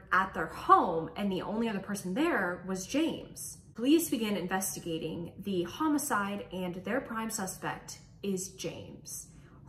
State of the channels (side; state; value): both; identical; correlation 1.00